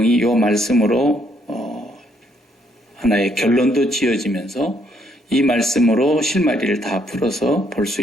이 말씀으로 하나의 결론도 지어지면서 이 말씀으로 실마리를 다 풀어서 볼 수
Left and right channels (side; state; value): both; normal; correlation 0.71